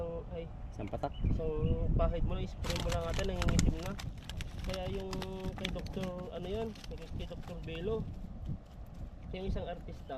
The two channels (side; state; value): both; identical; correlation 1.00